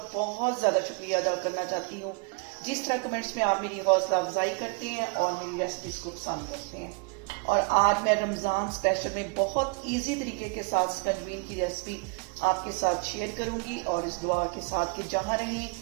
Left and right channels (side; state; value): left; quieter; 31.7 dB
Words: बहुत ज़्यादा शुक्रिया अदा करना चाहती हूँ जिस तरह कमेंट्स में आप मेरी हौसला अफजाई करते हैं और मेरी रेसिपीज को पसंद करते हैं। और आज मैं रमज़ान स्पेशल में बहुत इजी तरीके के साथ स्कंजवीन की रेसिपी आपके साथ शेयर करूंगी और इस दुआ के साथ कि जहाँ रहें